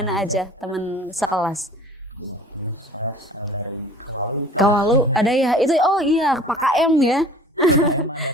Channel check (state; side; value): normal; both; correlation 0.47